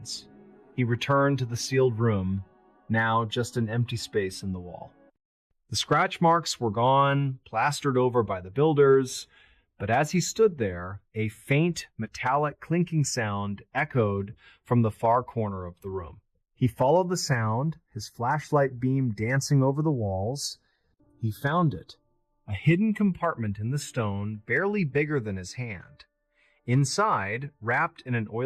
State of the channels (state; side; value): identical; both; correlation 1.00